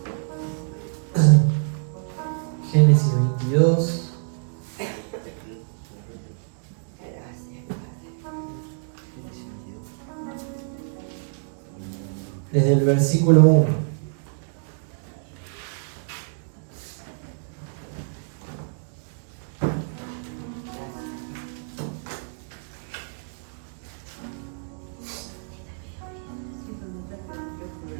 Génesis 22. Desde el versículo 1.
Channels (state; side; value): silent; left; digital silence